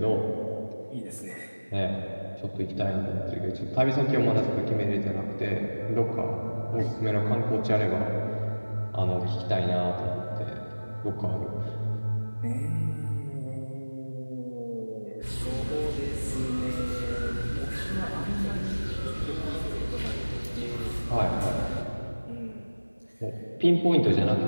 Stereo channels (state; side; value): inverted; both; correlation -1.00